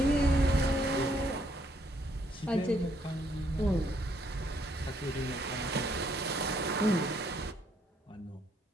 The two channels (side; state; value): both; normal; correlation 0.70